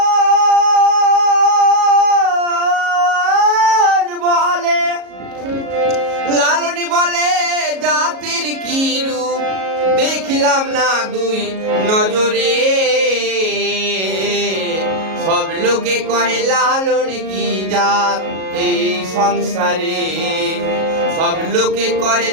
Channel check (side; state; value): left; late; 37 ms